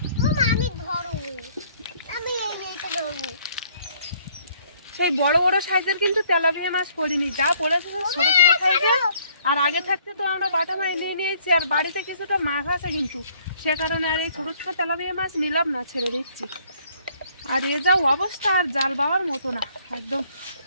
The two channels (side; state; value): both; inverted; correlation -0.62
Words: সেই বড় বড় সাইজের কিন্তু তেলাপিয়া মাছ পড়িনি, যা পড়েছে ছোট ছোট সাইজের। আর আগে থাকতে তো আমরা বাটা মাছ নিয়ে নিয়েছি, আর বাড়িতে কিছুটা মাছ আছে কিন্তু, সে কারণে আর এই ছোট ছোট তেলাপিয়া মাছ নিলাম না, ছেড়ে দিচ্ছি। আর এ যা অবস্থা, আর জাল বাবার মতো না, একদম